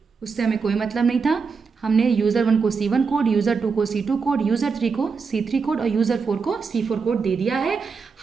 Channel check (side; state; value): left; quieter; 5.2 dB